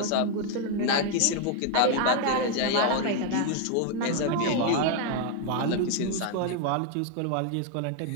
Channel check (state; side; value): different; both; correlation 0.00